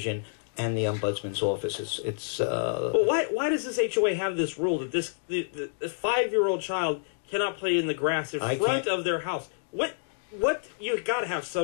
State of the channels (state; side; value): silent; right; digital silence